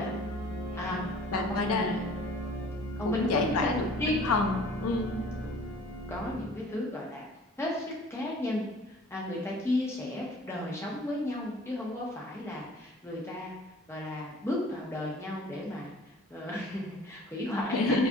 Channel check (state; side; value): normal; both; correlation 0.49